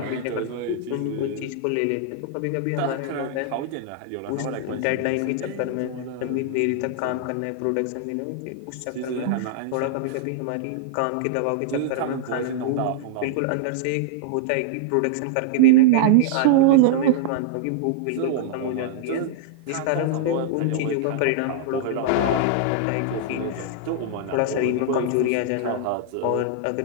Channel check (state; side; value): different; both; correlation -0.01